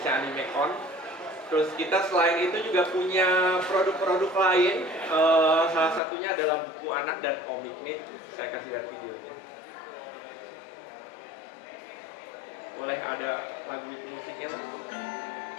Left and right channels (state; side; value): drops out; right; at 6.0 s